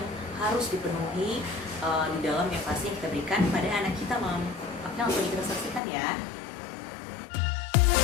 harus dipenuhi di dalam empasi yang kita berikan pada anak kita, mom. Oke, langsung kita saksikan ya.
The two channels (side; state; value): right; drops out; at 5.8 s